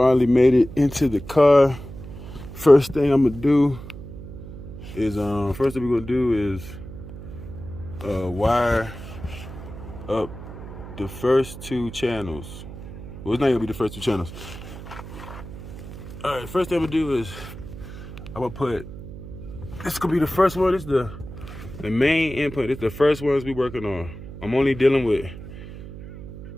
made it into the car. First thing I'm gonna do is wire up the first two channels. Well, it's not gonna be the first two channels. All right, first thing I'm gonna do is I'm gonna put, this gonna be the first one. This is the main input. It's the first ones we working on. I'm only dealing with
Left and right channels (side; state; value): right; noise; hum, 13 dB below the sound